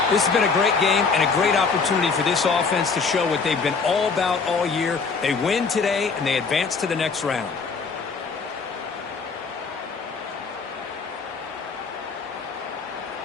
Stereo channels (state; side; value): quieter; right; 4.9 dB